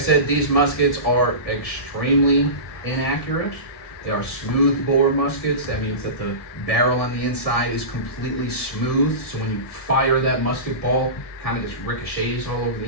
these muskets are extremely inaccurate. They are smooth bore muskets. That means that the barrel on the inside is completely smooth. So when you fire that musket ball, it kind of just ricochets all over the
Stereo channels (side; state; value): right; late; 1.7 ms